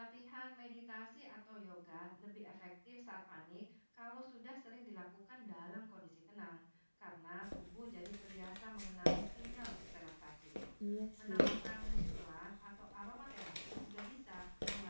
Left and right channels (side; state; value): both; inverted; correlation -1.00